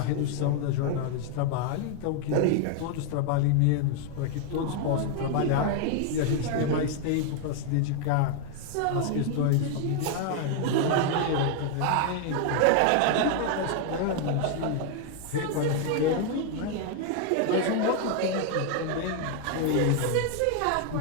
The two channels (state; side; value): different; both; correlation 0.00